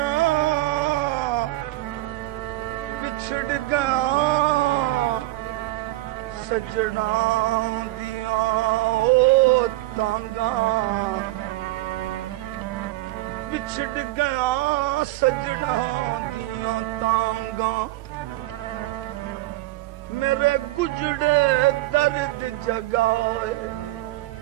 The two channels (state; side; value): quieter; left; 18.4 dB